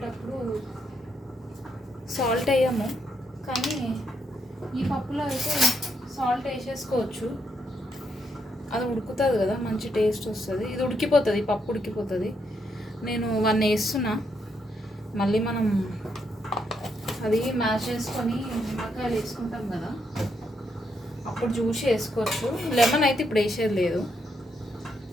సాల్ట్ వేయము, కానీ ఈ పప్పులో అయితే సాల్ట్ వేసేసుకోవచ్చు. అది ఉడుకుతుంది కదా, మంచి టేస్ట్ వస్తుంది. ఇది ఉడికిపోతుంది, పప్పు ఉడికిపోతుంది. నేను 1 వేస్తున్నా. మళ్ళీ మనం అది మ్యాష్ చేసుకొని నిమ్మకాయలు వేసుకుంటాం కదా, అప్పుడు జ్యూస్ వేసుకోవచ్చు. లెమన్ అయితే ఇప్పుడు వేసేది లేదు.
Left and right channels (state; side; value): normal; both; correlation 0.77